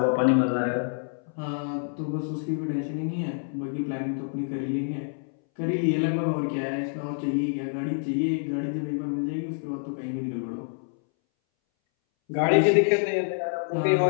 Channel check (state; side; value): silent; right; 60 dB below the other